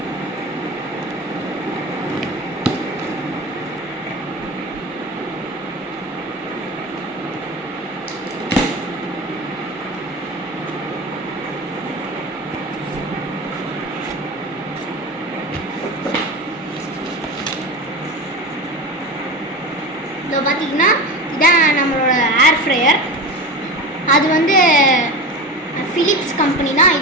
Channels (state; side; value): normal; both; correlation 0.28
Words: இப்போ பார்த்தீங்கன்னா இதான் நம்மளோட ஏர் ஃப்ரையர். அது வந்து ஃபிலிப்ஸ் கம்பெனி தான்.